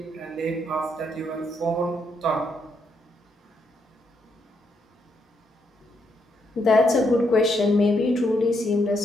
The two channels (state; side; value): normal; both; correlation 0.77